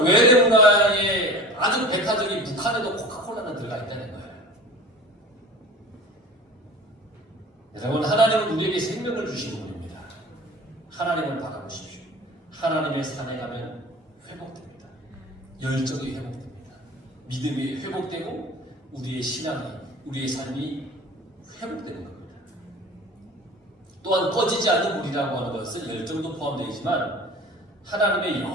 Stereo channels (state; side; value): normal; both; correlation 0.39